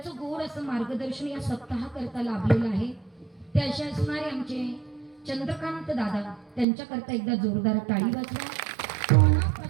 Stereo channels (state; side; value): drops out; left; at 6.7 s